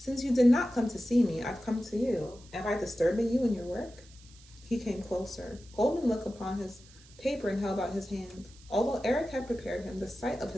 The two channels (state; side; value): noise; right; hiss, 24 dB below the sound